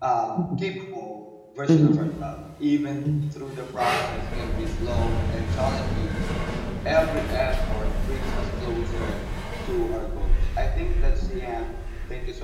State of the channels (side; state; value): both; identical; correlation 1.00